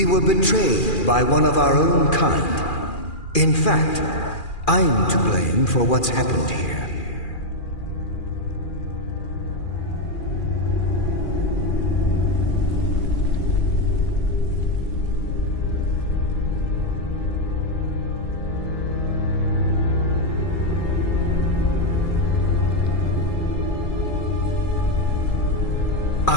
were betrayed by one of our own kind. In fact, I'm to blame for what's happened here.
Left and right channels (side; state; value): right; late; 2.4 ms